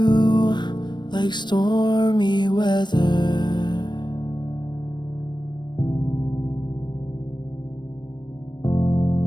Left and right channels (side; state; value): right; late; 0.22 ms